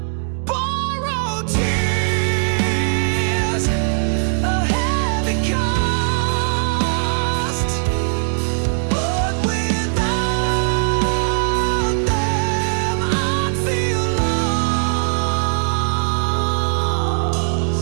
Borrowed tears, a heavy cost, but without them I'd feel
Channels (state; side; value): silent; left; digital silence